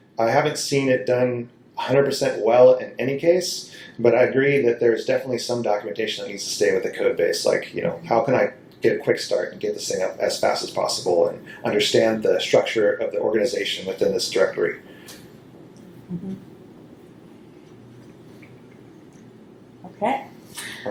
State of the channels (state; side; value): identical; both; correlation 1.00